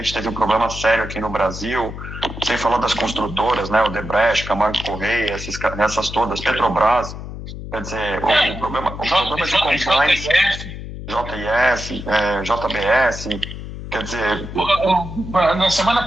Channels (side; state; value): left; noise; hum, 10 dB below the sound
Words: teve um problema sério aqui no Brasil, sem falar das construtoras, né? Odebrecht, Camargo Correia, essas todas, Petrobras, quer dizer, o problema de compliance, JIS, JBS, quer dizer... Na semana